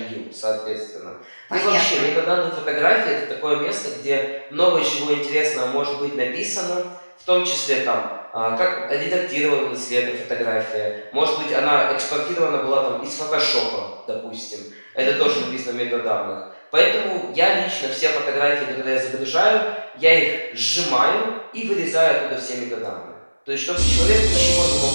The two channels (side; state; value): both; inverted; correlation -1.00